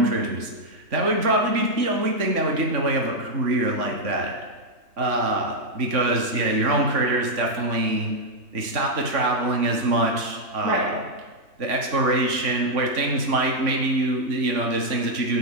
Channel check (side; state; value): left; late; 3.5 ms